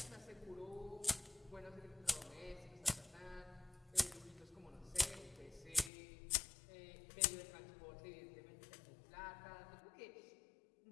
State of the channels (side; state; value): right; drops out; at 5.9 s